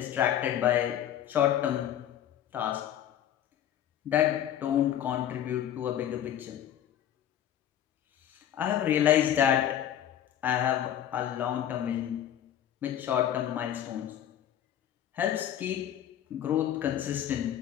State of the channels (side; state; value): right; quieter; 10.7 dB